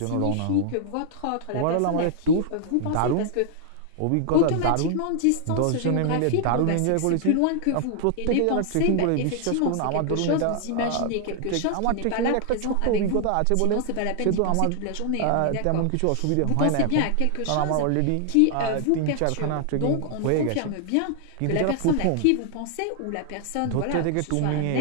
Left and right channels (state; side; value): different; both; correlation 0.00